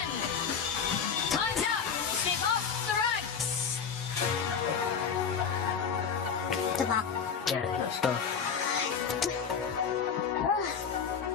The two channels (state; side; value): quieter; right; 6.6 dB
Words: Time's up. Step off the rugs. Good luck. Yeah, let's go.